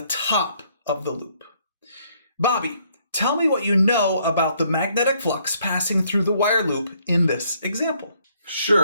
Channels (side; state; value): both; inverted; correlation -0.68